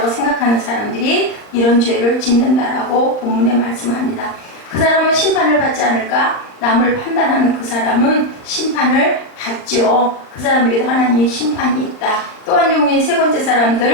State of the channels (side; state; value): right; late; 39 ms